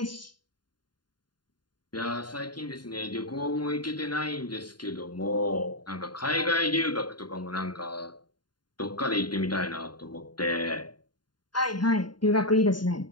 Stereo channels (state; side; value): late; right; 0.71 ms